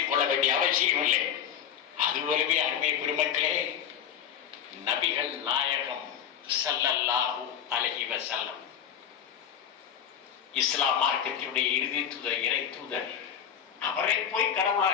கொள்ள வேண்டிய அவசியம் இல்லை. அதுபோலவே அருமை பெருமக்களே, நபிகள் நாயகம் ஸல்லல்லாஹு அலைஹி வஸல்லம் இஸ்லாம் மார்க்கத்தினுடைய இறுதி தூதர், இறை தூதர், அவரை போய்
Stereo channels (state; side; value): quieter; right; 8.9 dB